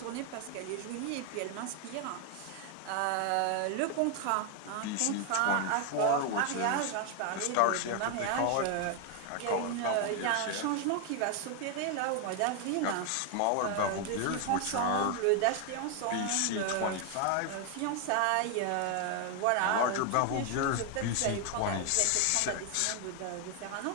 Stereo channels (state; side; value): different; both; correlation 0.01